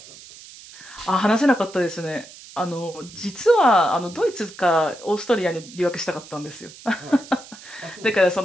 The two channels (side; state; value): right; noise; hiss, 18 dB below the sound